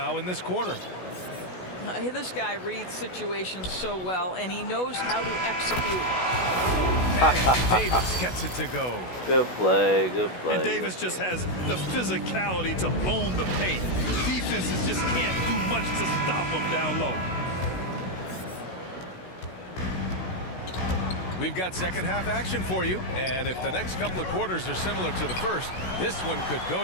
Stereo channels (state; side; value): late; right; 16 ms